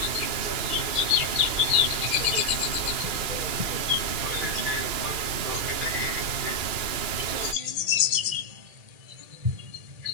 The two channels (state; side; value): late; left; 2.3 ms